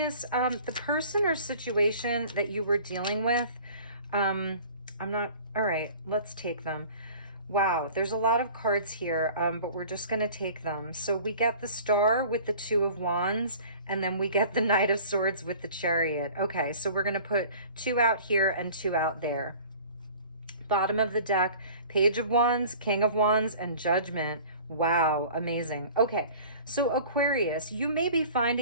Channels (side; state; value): both; inverted; correlation -0.46